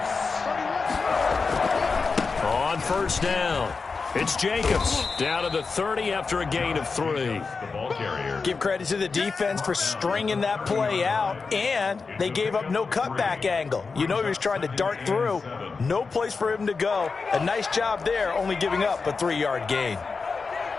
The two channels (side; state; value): right; quieter; 4.6 dB